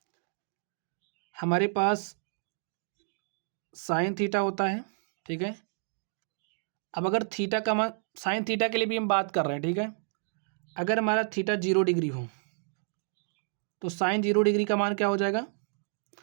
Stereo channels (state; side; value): silent; left; digital silence